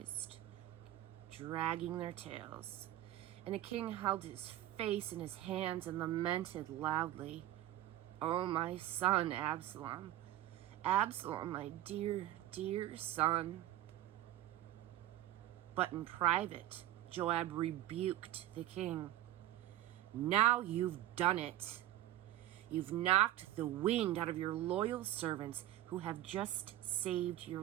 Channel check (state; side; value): quieter; left; 13.8 dB